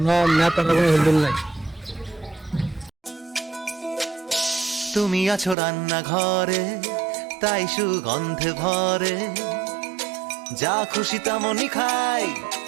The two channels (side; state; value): left; drops out; at 5.6 s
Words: নেতার কোনো হেলদুল নাই। তুমি আছো রান্নাঘরে, তাই সুগন্ধে ভরে, যা খুশি তেমনই খাই